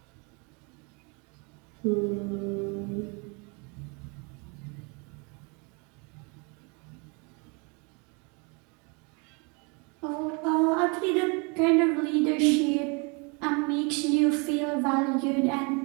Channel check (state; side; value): quieter; left; 32.2 dB